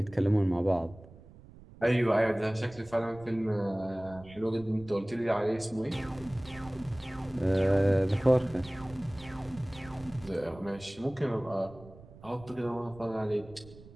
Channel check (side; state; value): right; noise; rumble, 20 dB below the sound